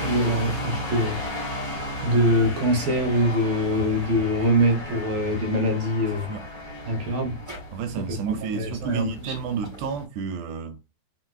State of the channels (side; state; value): left; late; 12 ms